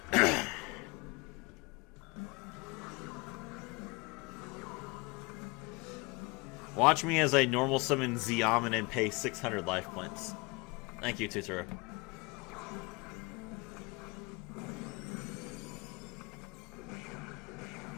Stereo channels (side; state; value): right; quieter; 26.7 dB